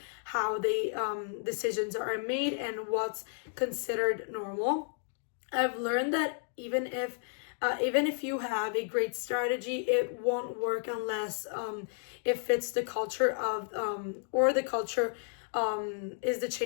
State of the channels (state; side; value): silent; right; 56 dB below the other